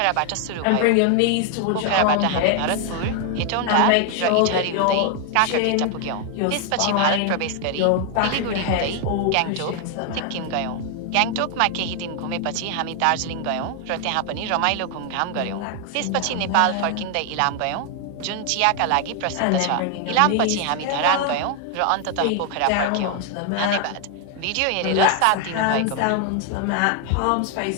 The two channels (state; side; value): different; both; correlation 0.01